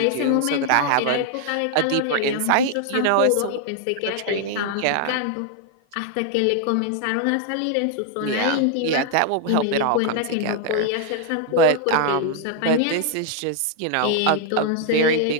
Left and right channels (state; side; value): different; both; correlation 0.00